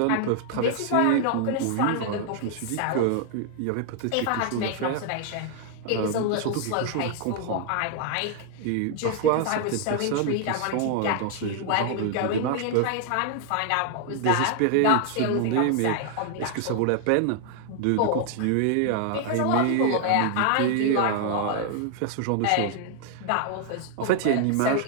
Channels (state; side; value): different; both; correlation 0.00